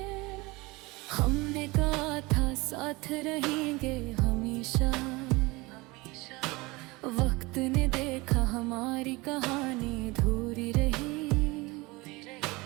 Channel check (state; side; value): quieter; left; 23.5 dB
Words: हमने कहा था साथ रहेंगे हमेशा, वक्त ने देखा हमारी कहानी अधूरी रही।